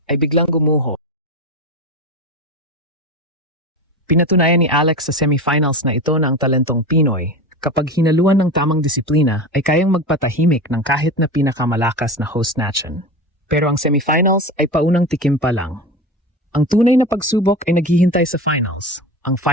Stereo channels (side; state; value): both; normal; correlation 0.26